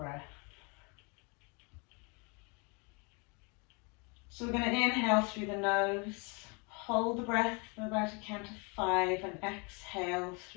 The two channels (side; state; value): right; quieter; 31.6 dB